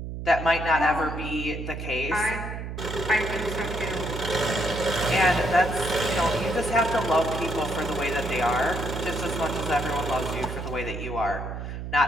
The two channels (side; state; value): right; noise; hum, 7 dB below the sound